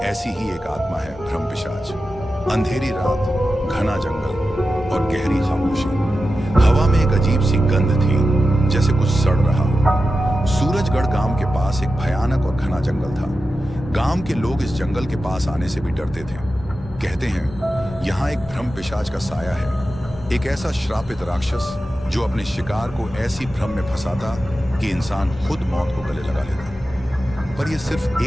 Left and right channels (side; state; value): both; normal; correlation 0.92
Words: ऐसी ही एक आत्मा है भ्रम पिशाच। अंधेरी रात, घना जंगल और गहरी खामोशी। हवा में एक अजीब सी गंध थी, जैसे कुछ सड़ रहा हो। सूरजगढ़ गांव के पास एक भयानक और घना जंगल था। गांव के लोग इस जंगल के पास आने से भी डरते थे। कहते हैं यहाँ एक भ्रम पिशाच का साया है, एक ऐसा श्रापित राक्षस जो अपने शिकार को ऐसी भ्रम में फंसाता कि इंसान खुद मौत को गले लगा लेता। पर यह सिर्फ